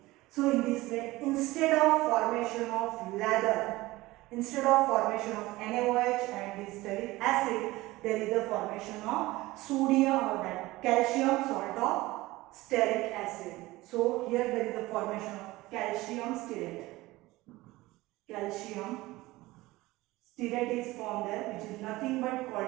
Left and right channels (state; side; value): quieter; left; 19.2 dB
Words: So in this way, instead of formation of lather, instead of formation of NaOH and this stearic acid, there is a formation of sodium or that calcium salt of stearic acid. So here there is a formation of calcium stearate. Calcium stearate is formed there, which is nothing but